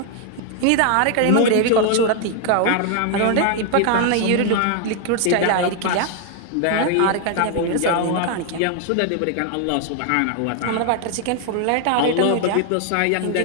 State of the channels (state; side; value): different; both; correlation 0.00